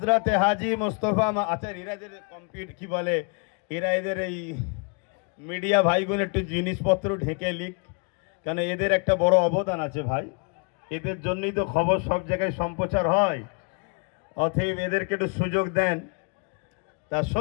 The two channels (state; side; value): quieter; right; 35.9 dB